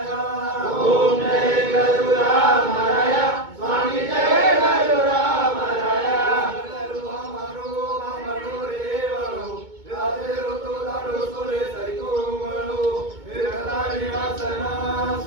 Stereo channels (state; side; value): late; left; 2.2 ms